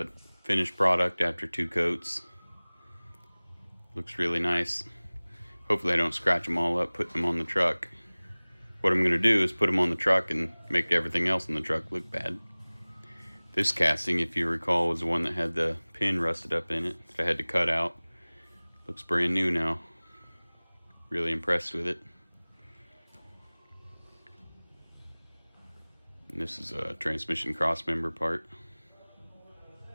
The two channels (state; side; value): inverted; both; correlation -1.00